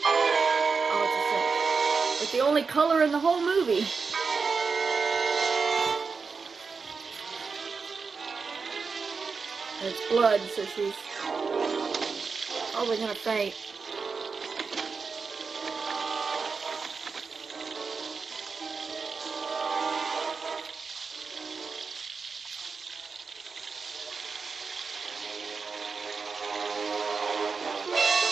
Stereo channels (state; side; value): quieter; left; 5.0 dB